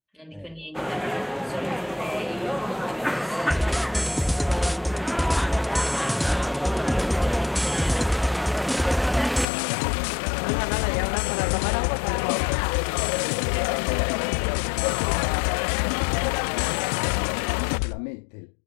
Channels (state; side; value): drops out; right; at 9.5 s